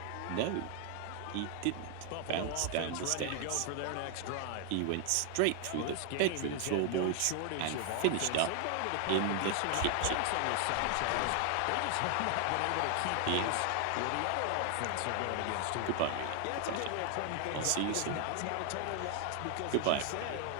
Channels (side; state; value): both; different; correlation 0.00